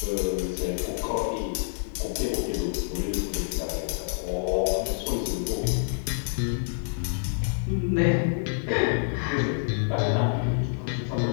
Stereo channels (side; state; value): right; silent; 60 dB below the other